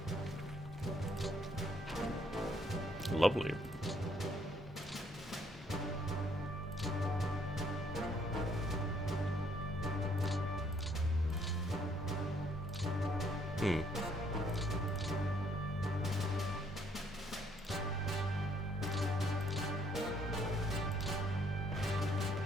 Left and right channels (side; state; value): both; normal; correlation 0.68